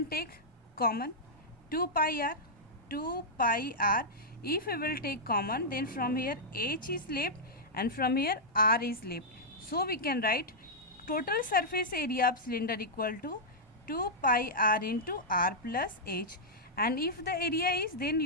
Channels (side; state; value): both; normal; correlation -0.09